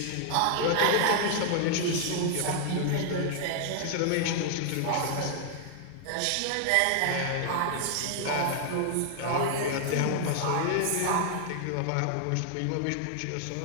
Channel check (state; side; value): different; both; correlation 0.00